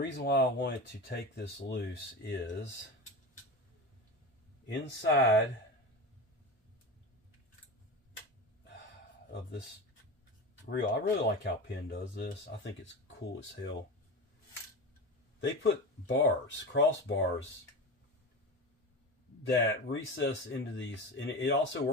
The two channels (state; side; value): normal; both; correlation 0.25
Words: why I wanted to take this loose is inside of this reel, I really like how Penn does this. I think it's cool as hell. They put bars, crossbars, that recess into these, and it also